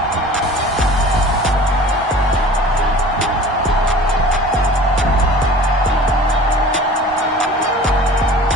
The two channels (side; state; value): both; normal; correlation 0.43